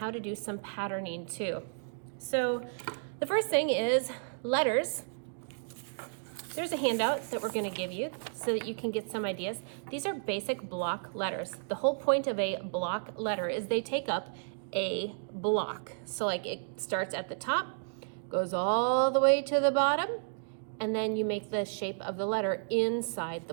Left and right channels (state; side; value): silent; left; digital silence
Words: to do some patterning too. So the first thing is letters. There's a handout that we're going to give you so that you can get some ideas. These are basic block letters. The whole point of a block letter is they take up a block. So like it starts at the top, goes all the way to the bottom, and then you make the shape of the letter inside the